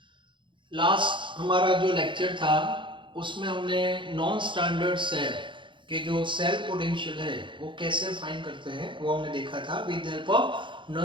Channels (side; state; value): left; late; 0.24 ms